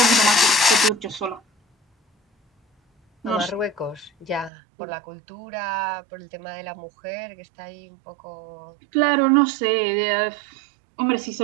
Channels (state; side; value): drops out; left; at 4.5 s